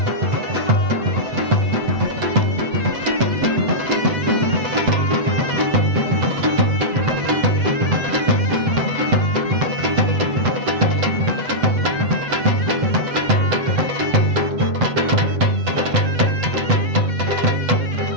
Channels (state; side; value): late; left; 7.9 ms